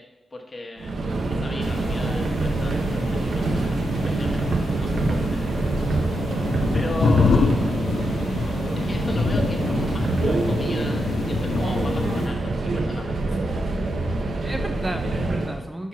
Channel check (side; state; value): both; normal; correlation 0.84